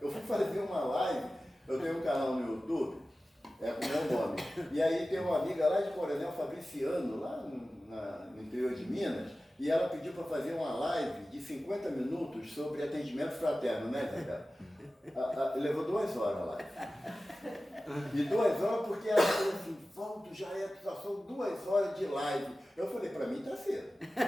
Eu fui fazer uma live, eu tenho um canal no YouTube, com o meu nome. E aí tem uma amiga lá de Coronel Fabriciano, lá no interior de Minas, e ela pediu para fazer uma live de 50 minutos sobre atendimento fraterno, né, Zé? Levou 2 horas a live. E 2 horas porque ela falou assim, Valdo, já são 2 horas de live. Eu falei, para mim tá cedo.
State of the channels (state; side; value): normal; both; correlation 0.96